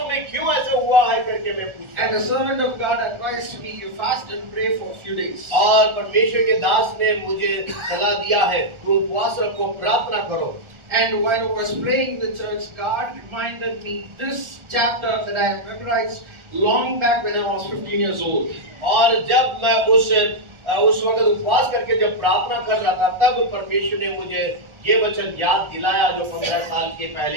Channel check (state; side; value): late; left; 1.4 ms